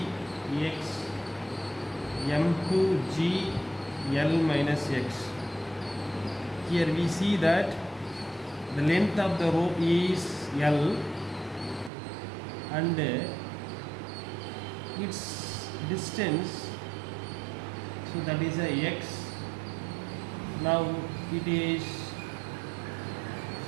m2g L minus x. Here we see that the length of the rope is L and its distance, so that is a x. Now it is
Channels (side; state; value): left; drops out; at 11.9 s